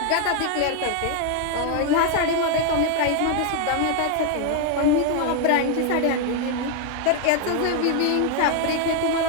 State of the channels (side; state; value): both; different; correlation 0.01